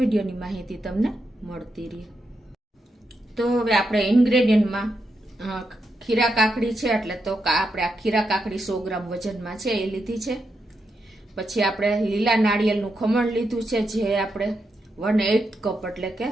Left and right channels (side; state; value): both; normal; correlation 0.84